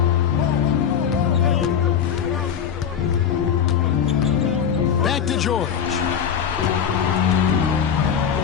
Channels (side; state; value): right; quieter; 7.9 dB